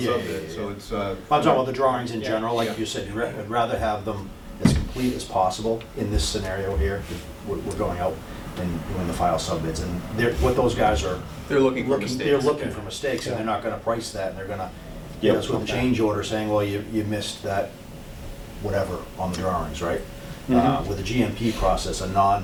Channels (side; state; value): both; identical; correlation 1.00